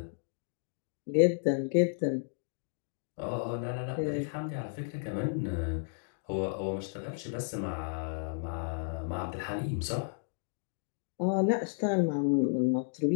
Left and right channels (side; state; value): right; silent; digital silence